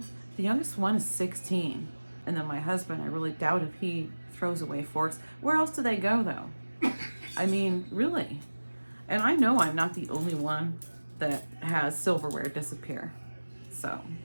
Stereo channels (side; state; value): both; inverted; correlation -1.00